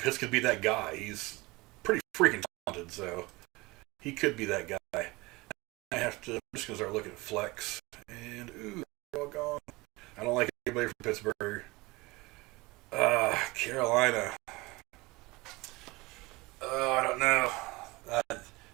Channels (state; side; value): quieter; left; 22.9 dB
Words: could be that guy. He's pretty freaking talented, so... He could be that guy. I'm just going to start looking at flex. And, ooh, they're all gone. I don't like anybody from Pittsburgh. Carolina. I don't know.